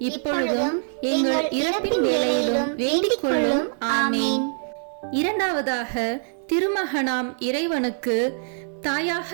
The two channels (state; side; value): silent; left; digital silence